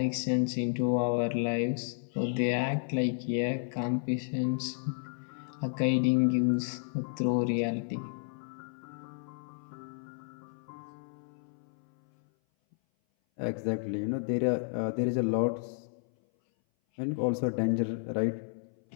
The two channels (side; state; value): right; silent; 57 dB below the other